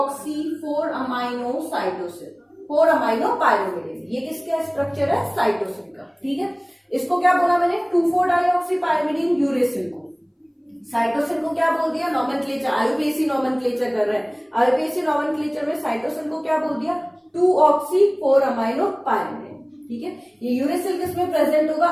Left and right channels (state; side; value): identical; both; correlation 1.00